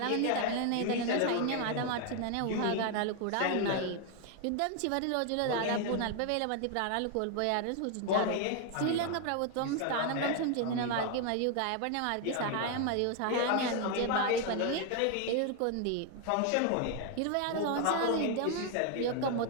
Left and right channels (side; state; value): both; different; correlation 0.00